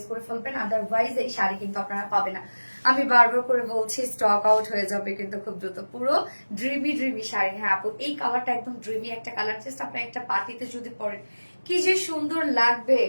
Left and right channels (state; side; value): inverted; both; correlation -1.00